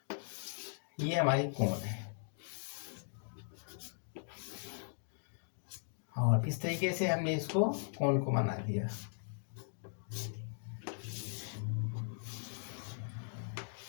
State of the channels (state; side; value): silent; right; digital silence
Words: ये हमारी कोण है, और इस तरीके से हमने इसको कोण को बना दिया।